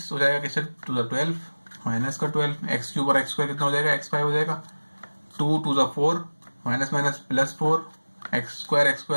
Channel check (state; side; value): inverted; both; correlation -1.00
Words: हो जाएगा किससे 2 12 माइनस का 12, x³ और x² कितना हो जाएगा, x5 हो जाएगा। 2 2 4 माइनस माइनस प्लस 4,